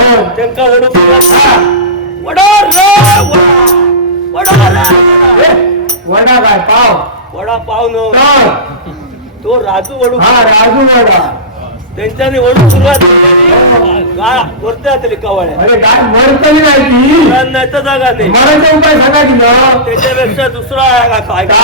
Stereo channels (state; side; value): normal; both; correlation -0.20